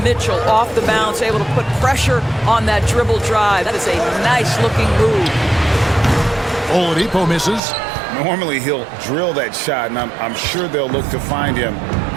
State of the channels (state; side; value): drops out; left; at 7.6 s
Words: Mitchell off the bounce, able to put pressure on that dribble drive. That is a nice-looking move. Oladipo misses. Normally he'll drill that shot, and I'm sure they'll look to find him